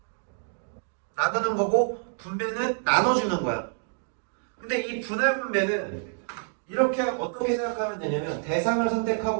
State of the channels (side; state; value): left; silent; 57 dB below the other